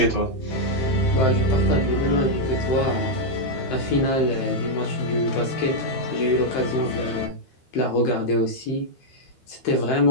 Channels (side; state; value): right; late; 12 ms